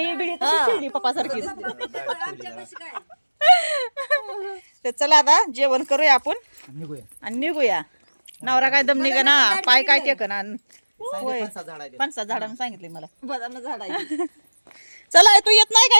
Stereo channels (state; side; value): inverted; both; correlation -1.00